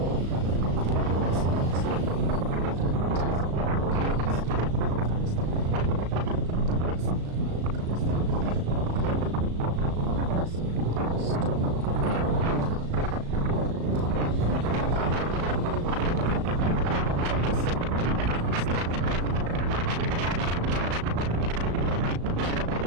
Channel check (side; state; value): left; late; 36 ms